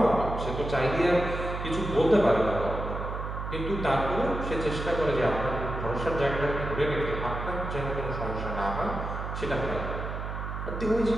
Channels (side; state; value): right; noise; hum, 5 dB below the sound